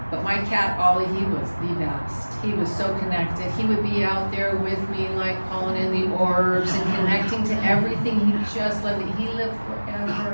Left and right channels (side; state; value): both; inverted; correlation -1.00